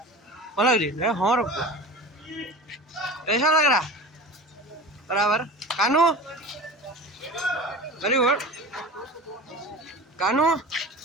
भल लगे हाँ रुक कैसा लग रहा बराबर कानू वेरी गुड कानू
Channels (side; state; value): both; normal; correlation 0.35